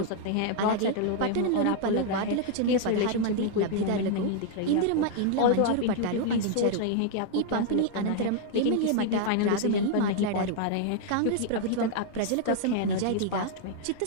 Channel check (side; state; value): both; different; correlation 0.00